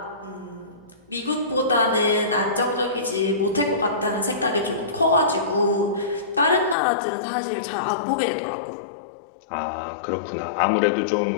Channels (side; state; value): right; drops out; at 6.8 s